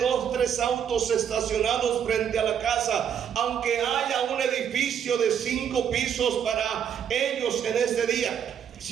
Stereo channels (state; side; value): quieter; left; 8.5 dB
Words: 3 autos estacionados frente a la casa, aunque haya un edificio de 5 pisos para ellos en este día,